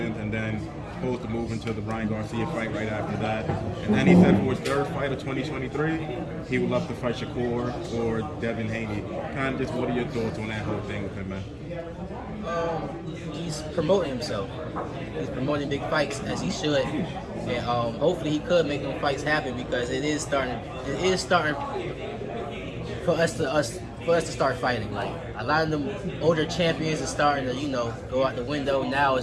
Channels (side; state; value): both; identical; correlation 1.00